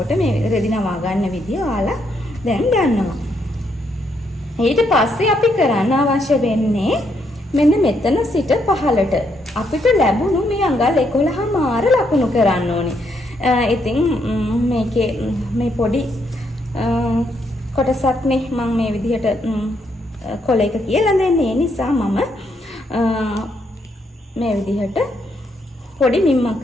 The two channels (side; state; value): both; normal; correlation 0.75